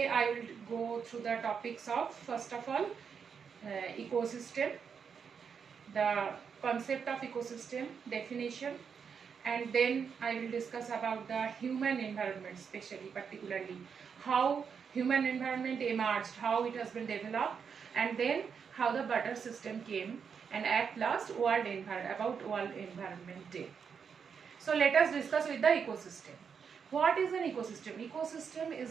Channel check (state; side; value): quieter; left; 6.5 dB